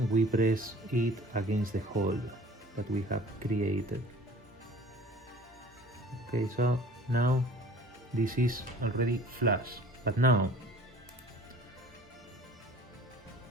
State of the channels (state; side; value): normal; both; correlation 0.47